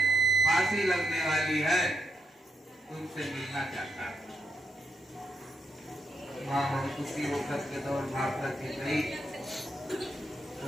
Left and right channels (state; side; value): normal; both; correlation 0.81